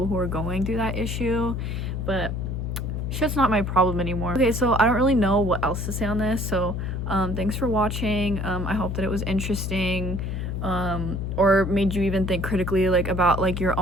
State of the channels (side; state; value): left; noise; hum, 3 dB below the sound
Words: who are going through that issue. But shit's not my problem anymore. Okay, so I don't really know what else to say on this, so thanks for watching. I hope that it was interesting, or made you even think critically like about like your